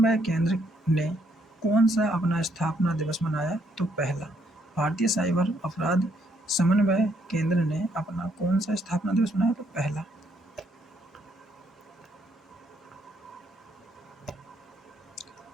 केंद्र ने कौन सा अपना स्थापना दिवस मनाया? तो पहला। भारतीय साइबर अपराध समन्वय केंद्र ने अपना कौन सा स्थापना दिवस मनाया? तो पहला।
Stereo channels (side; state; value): both; normal; correlation 0.71